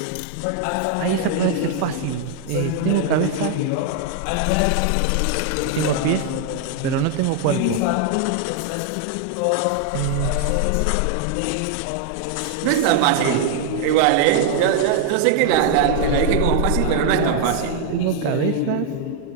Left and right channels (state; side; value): different; both; correlation 0.00